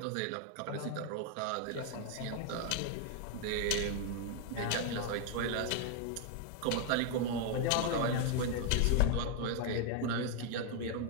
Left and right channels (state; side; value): different; both; correlation 0.00